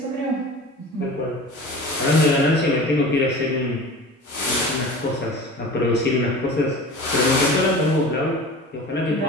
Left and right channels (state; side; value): normal; both; correlation 0.37